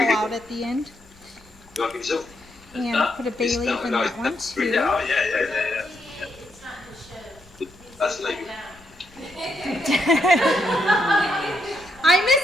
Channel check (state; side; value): noise; left; rumble, 27 dB below the sound